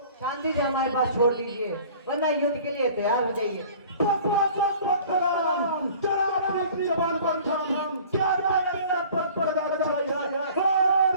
शांति से हमारे पास छोड़ दीजिए, वरना युद्ध के लिए तैयार हो जाइए। जरा अपनी जबान पर ध्यान, क्या पर पर्दा चाहिए?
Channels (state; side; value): inverted; both; correlation -0.47